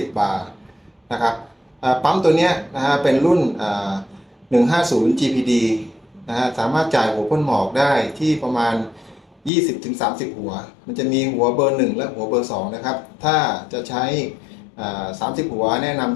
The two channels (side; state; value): right; drops out; at 9.5 s